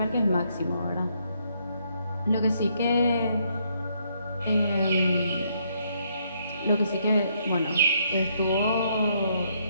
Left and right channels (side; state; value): both; inverted; correlation -0.72